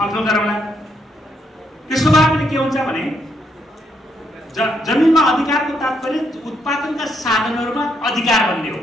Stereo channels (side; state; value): both; normal; correlation 0.75